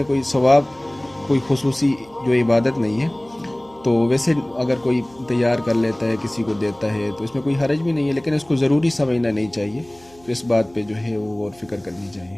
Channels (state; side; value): noise; right; hum, 27 dB below the sound